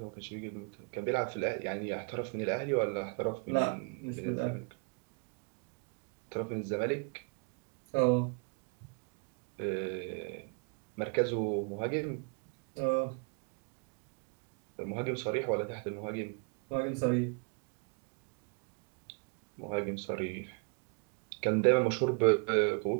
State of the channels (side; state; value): left; quieter; 37.4 dB